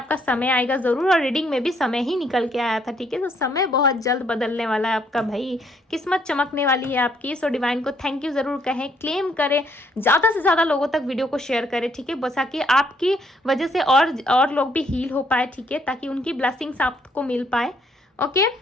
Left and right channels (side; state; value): both; normal; correlation 0.69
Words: समय आएगा जरूर, और रीडिंग में भी समय ही निकल के आया था, ठीक है। तो समय बहुत जल्द बदलने वाला है आपका भाई, किस्मत चमकने वाली है आपकी। सो डिवाइन को थैंक यू जरूर कहें, क्लेम करें, ज़्यादा से ज़्यादा लोगों तक वीडियो को शेयर करें, ठीक है। बस ताकि आपकी वजह से और लोग भी हील हो पाए, ठीक है, ताकि उनकी ब्लेसिंग्स आपको मिल पाए। ओके,